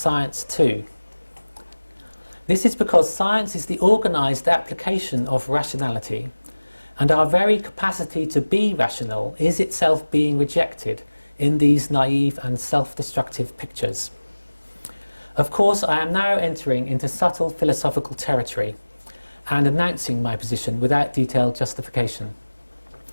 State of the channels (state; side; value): inverted; both; correlation -1.00